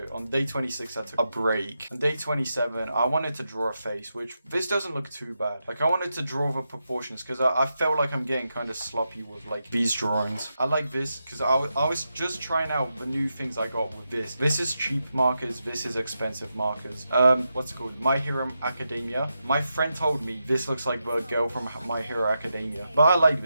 on day 26 I took a break. On day 27, I wanted to draw a face, which this doesn't look too bad. Like, I wanted to draw the proportions because I felt like I'm getting kind of sloppy with like these drawings. I like this because I was just trying out the new things I got with this. This is cheap markers, this is expensive markers. What's it called? My Hero Academia. My friend told me this looks like the girl from My Hero Academia, but I like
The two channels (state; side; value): inverted; both; correlation -0.87